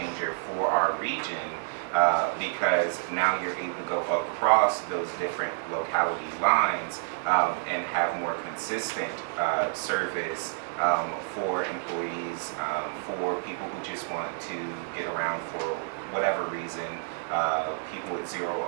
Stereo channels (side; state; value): left; silent; 59 dB below the other